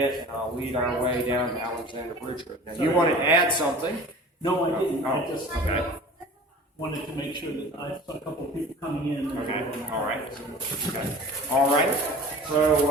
and I'll lead our way down to Alexander Bridge Road. Now, you wanted to add something? No, I didn't. Oh, I just okay. wanted to make sure that I saw a couple of people coming in. Okay, all right. Okay. All right.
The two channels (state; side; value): normal; both; correlation 0.41